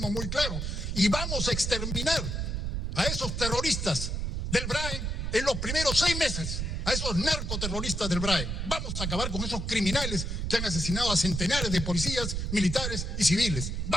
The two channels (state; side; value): noise; right; rumble, 2 dB below the sound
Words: muy claro. Y vamos a exterminar a esos terroristas del Brain en los primeros 6 meses. A esos narcoterroristas del Brain. Vamos a acabar con esos criminales que han asesinado a centenares de policías, militares y civiles.